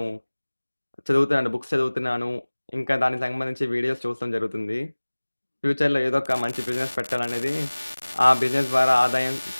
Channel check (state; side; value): inverted; both; correlation -1.00